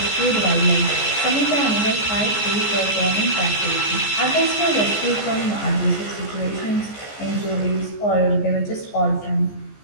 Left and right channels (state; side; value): late; right; 14 ms